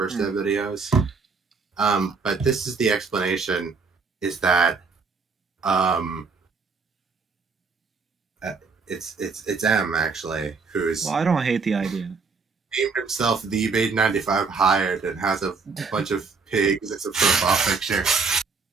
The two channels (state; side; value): quieter; left; 4.7 dB